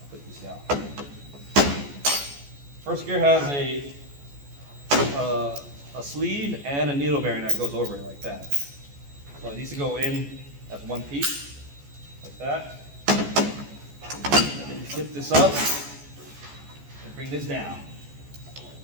put this down. First gear has a sleeve and a needle bearing that goes over it like that. So it needs to go in as one piece, like that. And then you flip this up and bring this down.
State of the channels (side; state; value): left; late; 14 ms